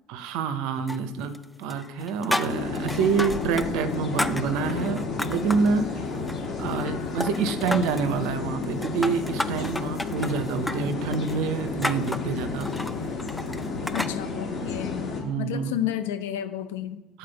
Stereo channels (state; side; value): normal; both; correlation 0.44